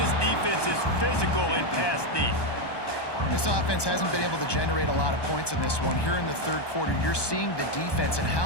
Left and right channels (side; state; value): right; late; 1.2 ms